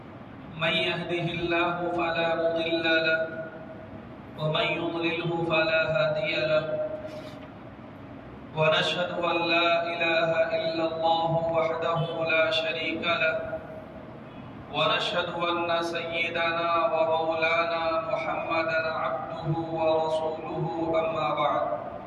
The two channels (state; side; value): identical; both; correlation 1.00